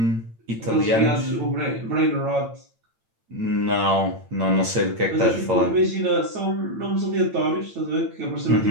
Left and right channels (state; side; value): late; left; 8.9 ms